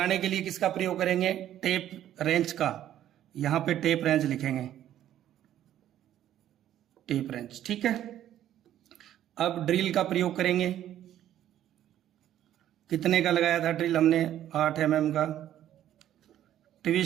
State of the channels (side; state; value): left; quieter; 11.8 dB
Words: के लिए किसका प्रयोग करेंगे, टेप रेंच का। यहां पे टेप रेंच लिखेंगे, टेप रेंच, ठीक है। अब ड्रिल का प्रयोग करेंगे, कितने का लगाया था ड्रिल हमने 8 mm का।